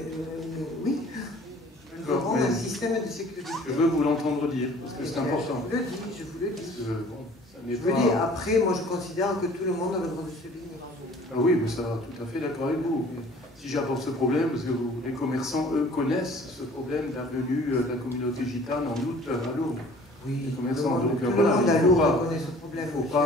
oui, nous aurons un système de sécurité. Je veux vous l'entendre dire, parce que c'est important. Je vous le dis. Parce que, bon, ça n'est je vous le dis, après, moi je considère que tout le monde a le droit de se baigner. Ah oui, mais ça, tout à fait d'accord avec vous. Mais si j'apporte ce problème, parce que les commerçants, eux, connaissent ce problème de la venue de la communauté gitane en août à Lourdes. Oui, les commerçants, donc tout le voilà, monde à Lourdes connaît ce problème. Il ne faut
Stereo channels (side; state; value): both; normal; correlation 0.51